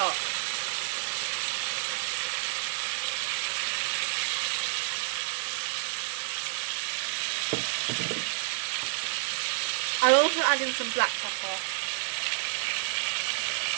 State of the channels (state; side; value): silent; left; digital silence